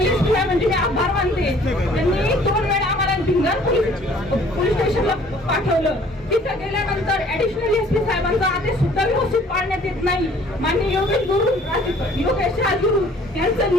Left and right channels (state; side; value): normal; both; correlation 0.55